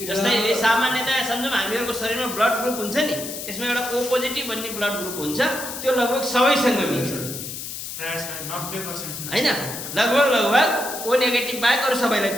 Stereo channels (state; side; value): noise; left; hiss, 8 dB below the sound